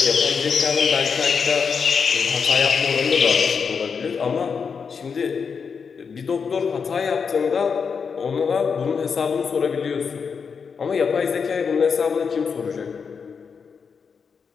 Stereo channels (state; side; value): quieter; right; 5.9 dB